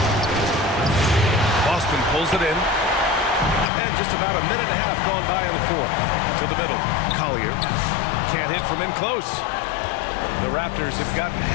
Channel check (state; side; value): drops out; right; at 3.7 s